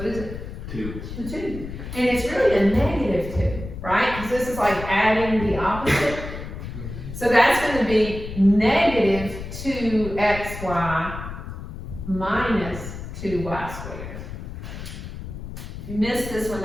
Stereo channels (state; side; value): noise; left; rumble, 9 dB below the sound